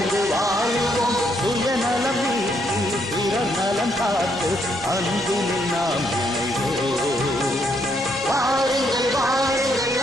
வாழுவோம். சுயநலம் நீக்கி பிறர் நலம் காத்து அன்பினில் நாம் இணைவோம். வாருங்கள் வாருங்கள்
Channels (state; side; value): normal; both; correlation 0.74